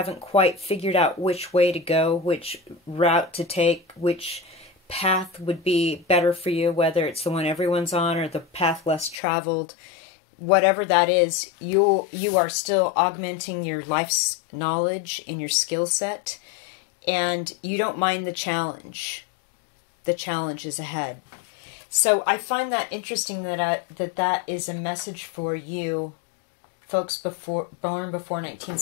quite figured out which way to go, which route to take, which path would be better for you, whether it's the one everyone's on or the path less traveled. Whatever that is, you are still augmenting your life's knowledge and your skill set, and you don't mind the challenge. The challenge is ahead. So I find that interesting that that is a message for you folks born before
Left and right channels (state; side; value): drops out; right; at 9.2 s